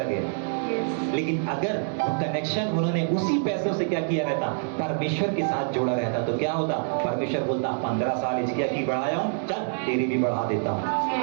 लेकिन अगर कनेक्शन उन्होंने उसी पैसों से क्या किया रहता, परमेश्वर के साथ जोड़ा रहता, तो क्या होता? परमेश्वर बोलता 15 साल इसकी की बढ़ाया हूं, चल तेरी भी बढ़ा देता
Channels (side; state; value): left; silent; 60 dB below the other